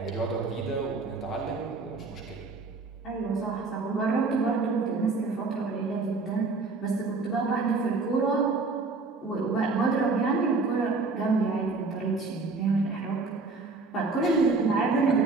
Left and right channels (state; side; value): quieter; left; 3.9 dB